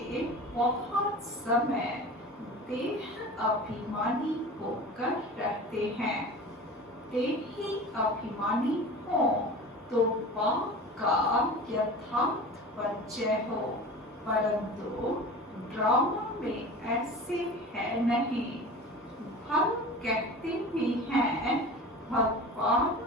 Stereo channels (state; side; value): normal; both; correlation 0.36